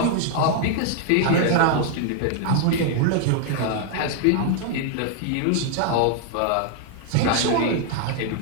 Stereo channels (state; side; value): different; both; correlation 0.00